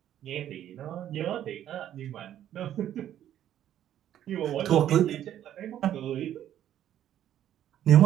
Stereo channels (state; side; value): quieter; left; 11.2 dB